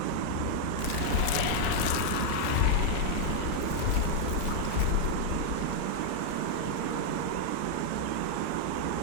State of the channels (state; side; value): different; both; correlation 0.00